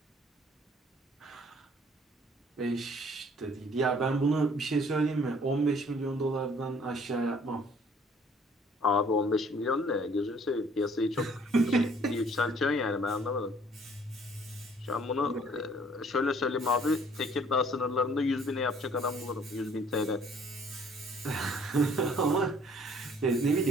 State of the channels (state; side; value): normal; both; correlation 0.58